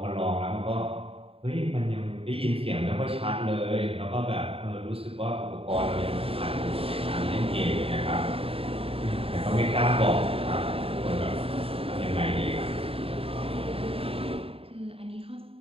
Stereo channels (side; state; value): left; late; 0.27 ms